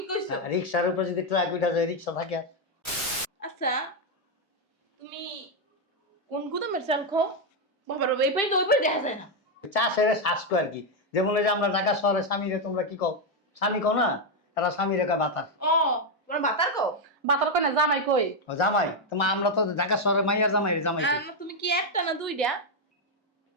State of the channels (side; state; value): both; normal; correlation 0.02